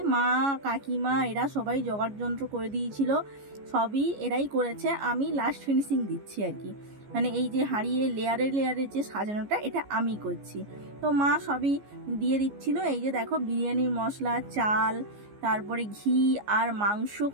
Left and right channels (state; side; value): late; left; 14 ms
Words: মা, কাকিমা এরা সবাই জোগাড় যন্ত্র করে দিয়েছিল, সবই এরাই করেছে। আমি লাস্ট ফিনিশিং দিচ্ছি আর কি, মানে এই যে হাঁড়িয়ে লেয়ারে লেয়ারে যে সাজানোটা, এটা আমি করছি। তো মা সবই দিয়ে দিচ্ছিল। এই যে দেখো, বিরিয়ানির মশলা, চাল, তারপরে ঘি আর মাংস,